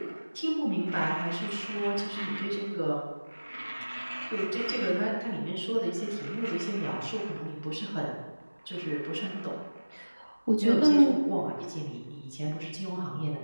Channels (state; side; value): inverted; both; correlation -1.00